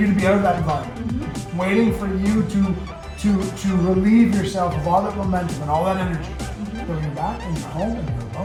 to be out of that environment, Mm-hmm. waiting for you to relieve yourself of all that momentum and all that energy. Mm-hmm. Then you're back and you're home and you're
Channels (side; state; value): both; identical; correlation 1.00